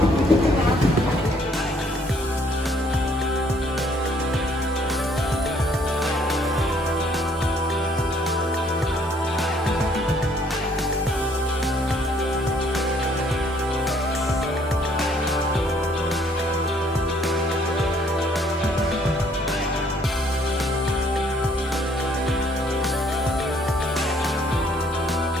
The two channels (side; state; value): both; normal; correlation 0.64